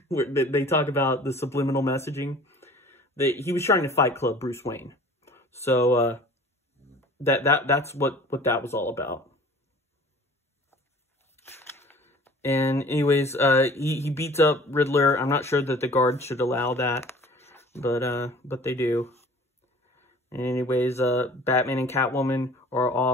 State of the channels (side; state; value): both; normal; correlation 0.47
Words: where they talk about the subliminal messaging. He was trying to Fight Club Bruce Wayne. So that's what that was all about. And anyways, he beats up Riddler. I'm not sure that the guards should allow that, but they do. And anyways, Batman and Catwoman are